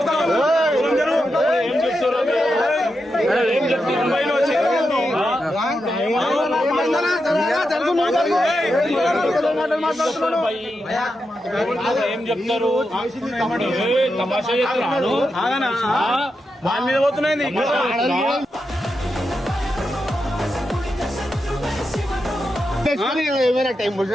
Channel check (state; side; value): normal; both; correlation 0.87